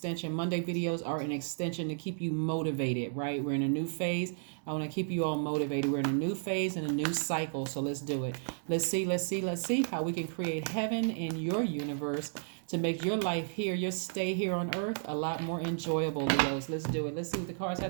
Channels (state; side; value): silent; left; digital silence